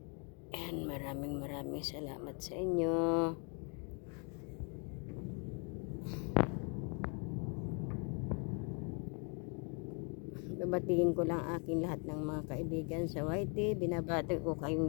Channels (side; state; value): right; quieter; 37.2 dB